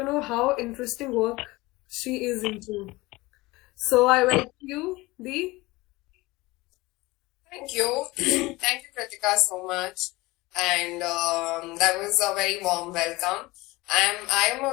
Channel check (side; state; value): right; quieter; 21.1 dB